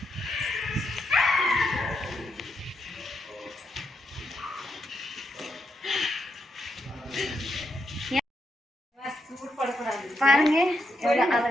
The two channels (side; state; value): both; normal; correlation 0.81